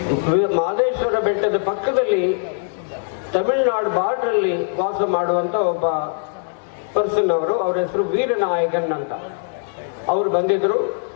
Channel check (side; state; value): right; silent; 65 dB below the other